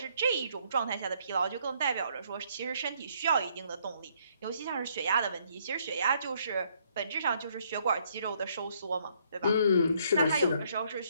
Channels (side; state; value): both; inverted; correlation -0.68